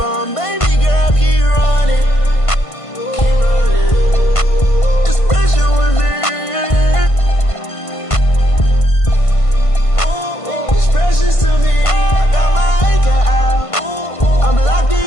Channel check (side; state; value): right; late; 1.5 ms